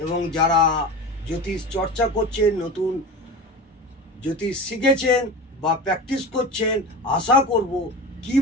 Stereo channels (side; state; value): both; normal; correlation 0.29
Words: এবং যারা জ্যোতিষ চর্চা করছেন, নতুন জ্যোতিষ শিখেছেন বা প্র্যাকটিস করছেন, আশা করব